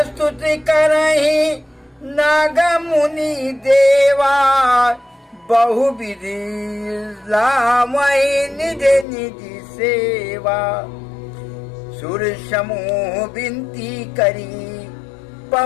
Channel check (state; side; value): drops out; right; at 9.1 s